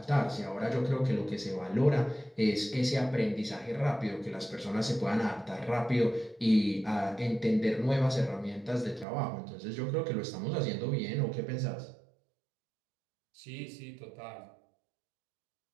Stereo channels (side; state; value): left; drops out; at 9.1 s